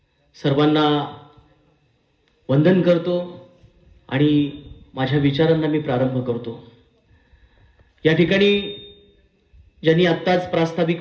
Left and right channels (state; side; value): identical; both; correlation 1.00